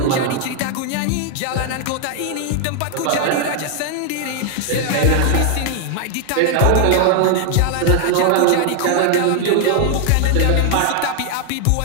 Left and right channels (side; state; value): both; different; correlation 0.00